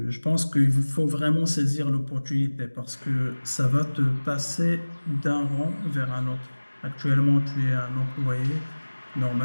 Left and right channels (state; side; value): inverted; both; correlation -1.00